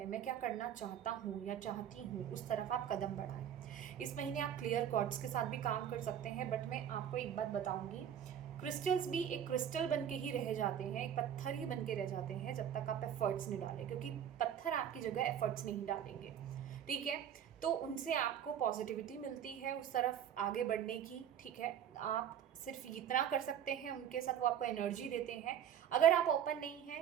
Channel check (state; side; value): quieter; left; 9.4 dB